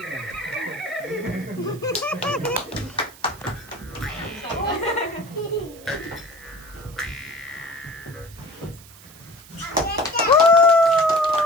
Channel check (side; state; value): right; noise; hiss, 21 dB below the sound